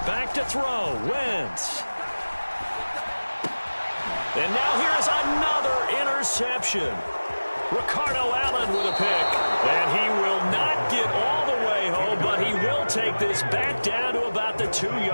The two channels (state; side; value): inverted; both; correlation -1.00